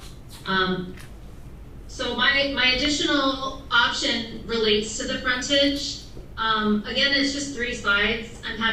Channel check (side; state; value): both; identical; correlation 1.00